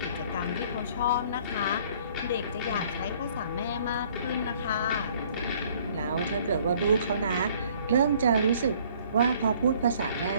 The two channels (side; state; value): both; inverted; correlation -0.58